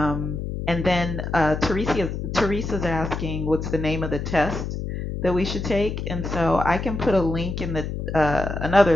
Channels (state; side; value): noise; left; hum, 5 dB below the sound